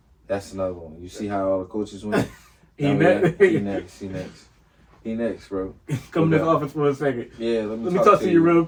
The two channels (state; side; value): identical; both; correlation 1.00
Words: That's another one. You see how all the coaches went? He next, bro. Come to this office for a second. Yeah, let me talk to you real